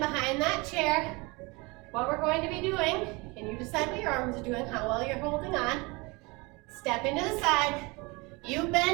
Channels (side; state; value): left; quieter; 26.3 dB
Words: that chair. What we're going to be doing, and you decide what your arms are doing, how well you're holding on. Step into the side. You